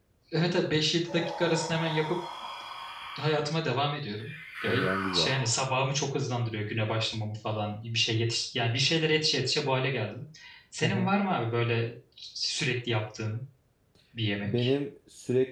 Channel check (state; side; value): identical; both; correlation 1.00